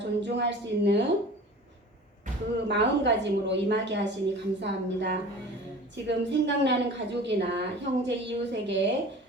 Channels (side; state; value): both; normal; correlation 0.40